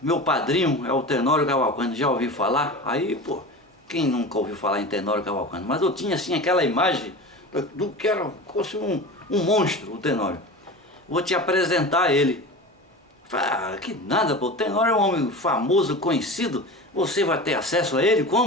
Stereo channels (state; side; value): normal; both; correlation 0.31